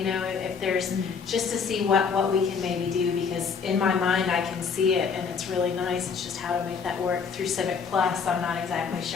there's, just to see what we can maybe do, because in my mind I can see it and it's really nice. It's just how to make that work through Civic Plus. I'm not exactly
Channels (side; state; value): right; quieter; 5.9 dB